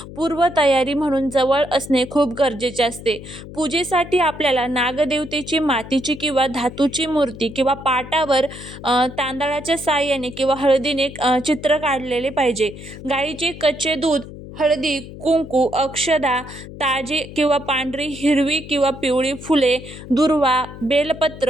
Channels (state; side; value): noise; left; hum, 14 dB below the sound